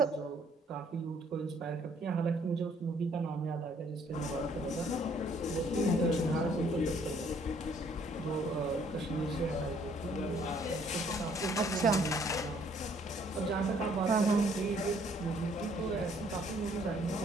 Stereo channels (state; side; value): normal; both; correlation 0.63